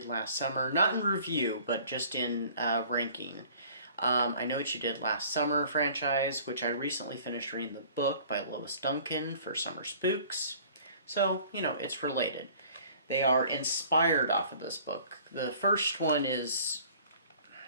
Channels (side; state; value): both; inverted; correlation -0.51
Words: Last Summer, not in review, but just in ranking. I Know What You Did Last Summer franchise, which I recently finished reading the book by Lois Duncan for Summer Spooks. So, you know, it's related. They are inspired off of this book. The first one is...